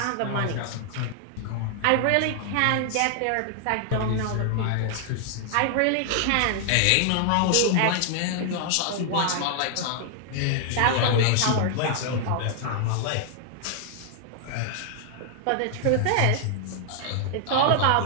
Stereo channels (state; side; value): different; both; correlation 0.00